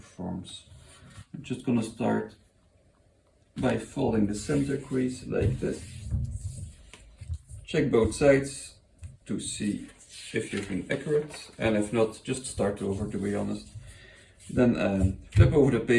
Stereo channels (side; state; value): both; identical; correlation 1.00